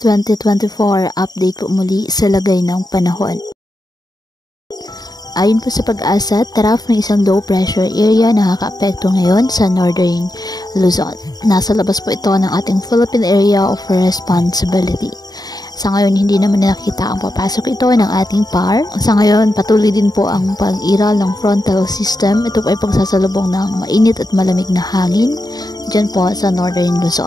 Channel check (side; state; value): right; late; 0.19 ms